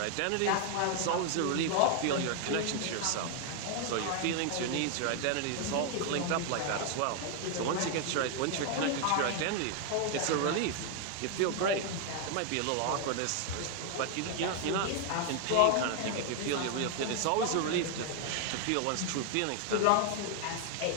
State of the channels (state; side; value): different; both; correlation 0.00